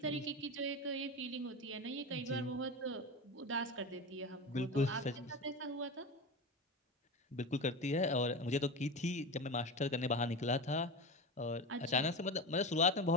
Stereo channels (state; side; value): normal; both; correlation 0.24